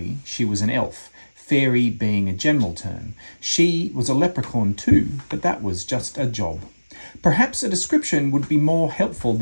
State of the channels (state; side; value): inverted; both; correlation -1.00